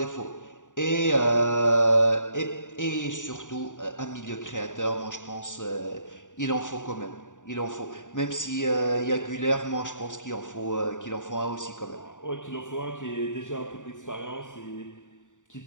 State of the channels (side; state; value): right; late; 0.86 ms